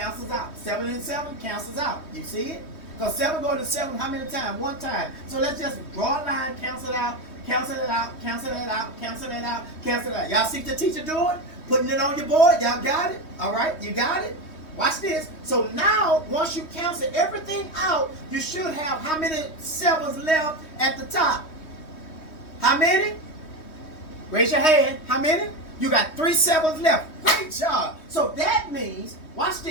out. 7 and 7 cancels out. You see it? Because 7 going to 7 how many times? 1 time. So let's just draw a line, cancel it out, cancel it out, cancel it out, cancel it out, cancel it out. Y'all see the teacher doing? Putting it on your board. Y'all got it? All right? You got it? Watch this. So now, once you cancel everything out, you should have how many 7s left at the top? How many? Raise your hand. How many? You got 3 7s left. Great job. So that means, watch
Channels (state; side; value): late; right; 3.2 ms